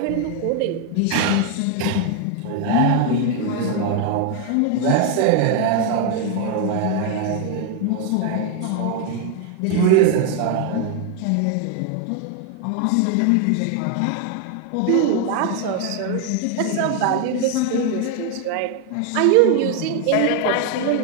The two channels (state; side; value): different; both; correlation 0.01